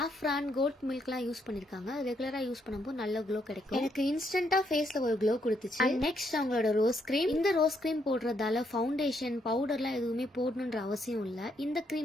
கோட் மில்க்லாம் யூஸ் பண்ணிருக்காங்க. ரெகுலரா யூஸ் பண்ணும்போது நல்ல க்ளோ கிடைக்கும். எனக்கு இன்ஸ்டன்ட்டா ஃபேஸ்ல ஒரு க்ளோ கொடுத்துச்சு. அண்ட் நெக்ஸ்ட் அவங்களோட ரோஸ் கிரீம். இந்த ரோஸ் கிரீம் போடுறதால ஃபவுண்டேஷன், பவுடர்லாம் எதுவுமே போடணும்ன்ற அவசியம் இல்ல. இந்த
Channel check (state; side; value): normal; both; correlation 0.75